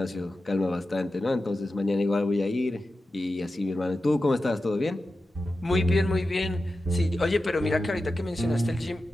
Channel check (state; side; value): normal; both; correlation 0.92